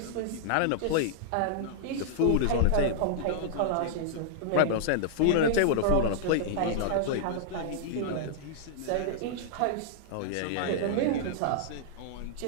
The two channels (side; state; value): both; different; correlation -0.01